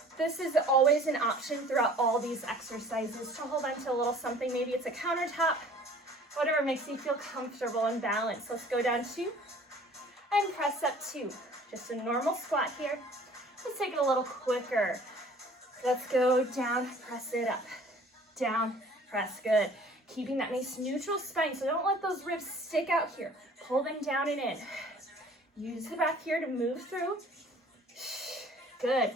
This is always an option throughout all these exercises to hold on to a little something. Maybe it's a countertop, whatever makes you feel comfortable and balanced. Let's go down 2 and press up 2. Just a normal squat here. Let's take it a little quicker. Let's go down, press it up, down, press, good. Keeping that nice neutral spine, so don't let those ribs stick out here. Pull them down and in. Use the breath here to move through.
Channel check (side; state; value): both; normal; correlation 0.51